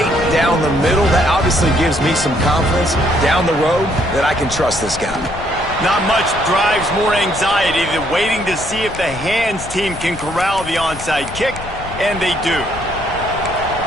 down the middle, that obviously gives me some confidence down the road that I can trust this guy. Not much drives more anxiety than waiting to see if the hands team can corral the onside kick, and they do.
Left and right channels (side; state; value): left; noise; rumble, 13 dB below the sound